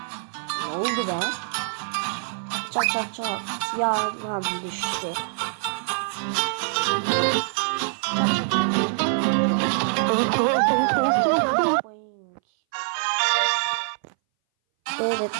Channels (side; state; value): left; silent; 60 dB below the other